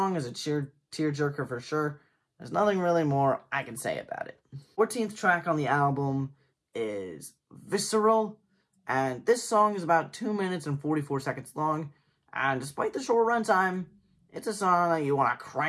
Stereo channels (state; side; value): identical; both; correlation 1.00